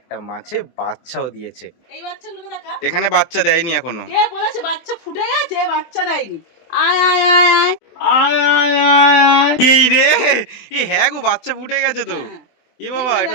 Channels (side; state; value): right; late; 24 ms